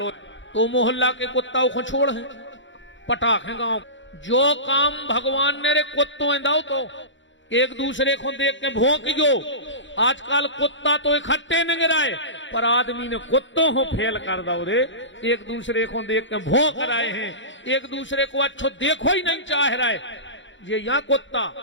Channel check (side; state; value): right; late; 0.54 ms